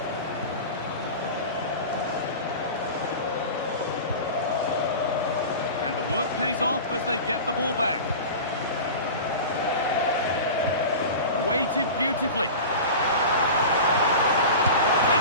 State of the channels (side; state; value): both; inverted; correlation -0.32